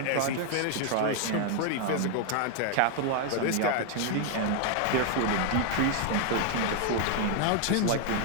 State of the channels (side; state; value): both; different; correlation 0.00